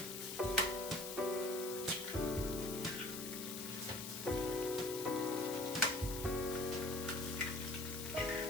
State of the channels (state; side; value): noise; left; hiss, 7 dB below the sound